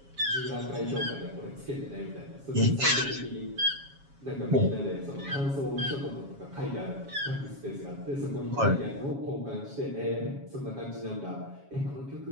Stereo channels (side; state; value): left; late; 7.3 ms